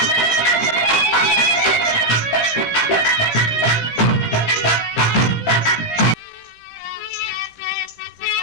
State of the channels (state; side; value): late; right; 17 ms